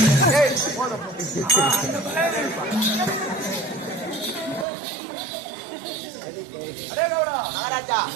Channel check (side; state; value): left; drops out; at 4.7 s